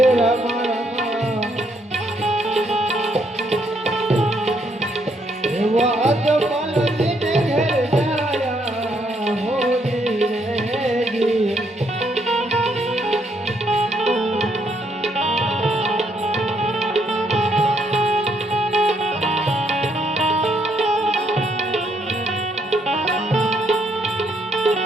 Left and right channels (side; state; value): both; normal; correlation 0.73